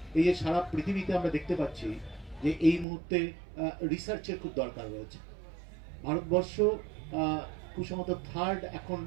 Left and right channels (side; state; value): left; drops out; at 2.9 s